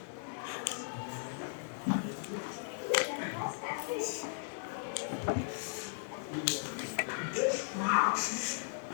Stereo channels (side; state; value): right; silent; digital silence